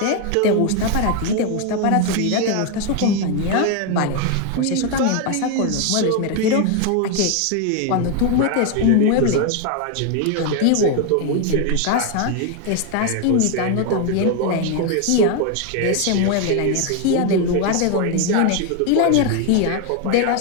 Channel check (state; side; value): different; both; correlation 0.01